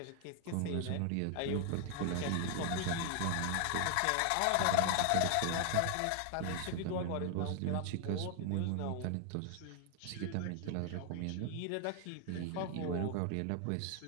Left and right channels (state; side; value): different; both; correlation 0.00